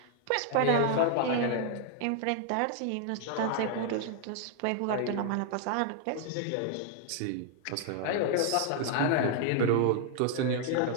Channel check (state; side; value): different; both; correlation 0.00